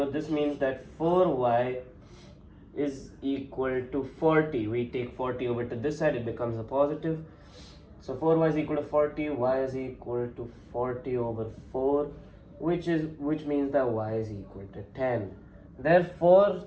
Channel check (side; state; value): both; identical; correlation 1.00